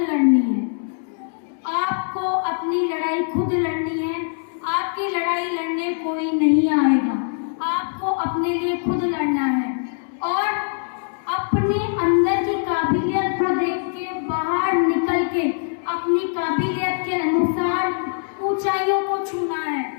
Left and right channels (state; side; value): silent; right; 64 dB below the other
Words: है, आपको अपनी लड़ाई खुद लड़नी है। आपकी लड़ाई लड़ने कोई नहीं आएगा, आपको अपने लिए खुद लड़ना है। और अपने अंदर की काबिलियत को देख के, बाहर निकल के अपनी काबिलियत के अनुसार ऊंचाइयों को छूना है।